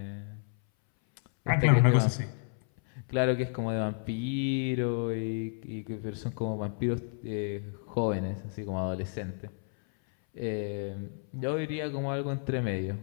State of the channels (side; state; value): right; silent; 57 dB below the other